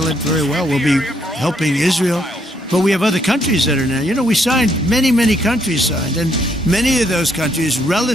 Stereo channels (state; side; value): normal; both; correlation 0.72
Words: it very well. We'll be helping Israel. But we have other countries that are now. You know, we signed, many countries signed. And many of those countries